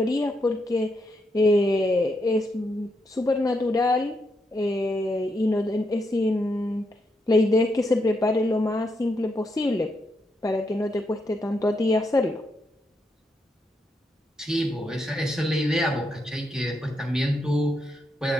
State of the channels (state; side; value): normal; both; correlation 0.81